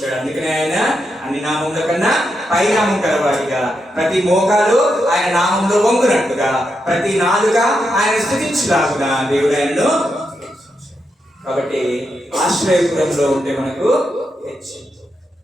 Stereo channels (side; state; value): both; normal; correlation 0.84